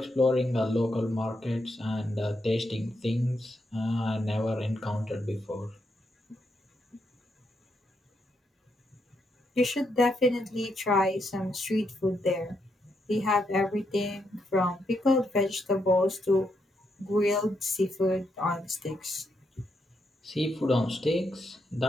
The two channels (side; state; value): both; normal; correlation 0.80